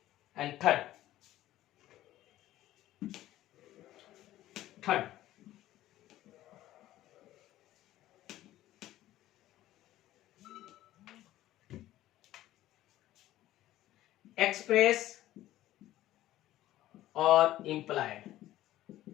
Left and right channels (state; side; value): quieter; right; 14.6 dB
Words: एंड थर्ड एक्सप्रेस और implied.